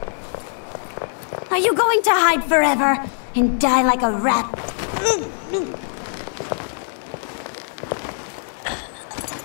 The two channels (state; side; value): silent; right; 59 dB below the other